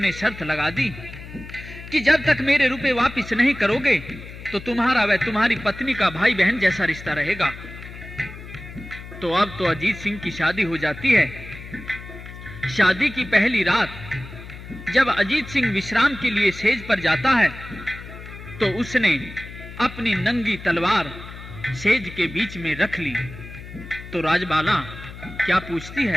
शर्त लगा दी कि जब तक मेरे रुपए वापस नहीं करोगे तो तुम्हारा व तुम्हारी पत्नी का भाई बहन जैसा रिश्ता रहेगा। तो अब तो अजीत सिंह की शादी हो जाती है। शादी की पहली रात जब अजीत सिंह विश्राम के लिए सेज पर जाता है तो उसने अपनी नंगी तलवार सेज के बीच में रख ली। तो राजबाला क्या पूछती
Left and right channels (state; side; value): noise; left; hum, 14 dB below the sound